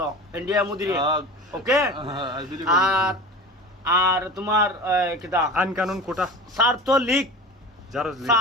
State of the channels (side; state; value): both; normal; correlation 0.34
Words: ইন্ডিয়া মুদিরে, ওকে। আর তোমার কিতা আইন কানুন কোটা ছাত্রলীগ জারজ